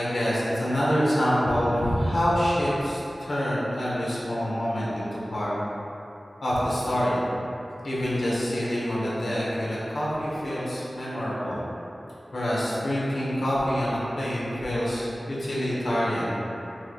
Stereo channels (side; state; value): both; normal; correlation 0.96